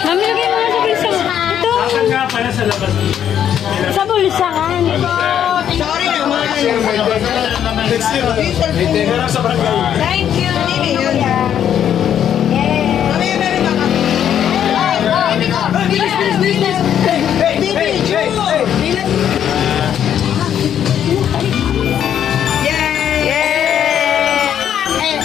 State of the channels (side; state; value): right; quieter; 9.6 dB